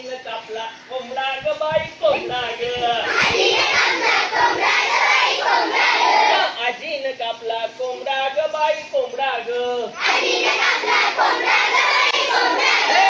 कापला कोंबडा ग बाई कोंबडा ग. आजीनं कापला कोंबडा ग बाई कोंबडा ग.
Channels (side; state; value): both; identical; correlation 1.00